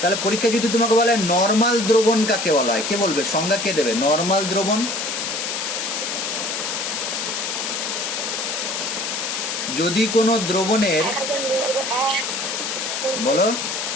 তাহলে পরীক্ষায় যদি তোমাকে বলে নর্মাল দ্রবণ কাকে বলা হয়, কে বলবে? সংজ্ঞা কে দেবে? নর্মাল দ্রবণ, যদি কোনো দ্রবণের, 1000 মিলিলিটার। বলো,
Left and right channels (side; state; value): left; noise; hiss, 3 dB below the sound